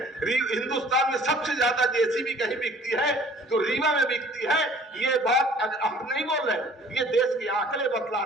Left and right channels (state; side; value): normal; both; correlation 0.52